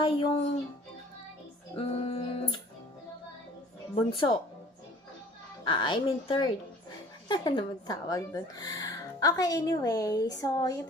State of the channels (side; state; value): both; normal; correlation 0.50